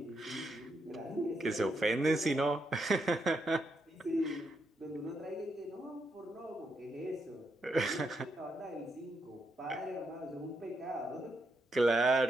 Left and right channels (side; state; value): both; normal; correlation 0.80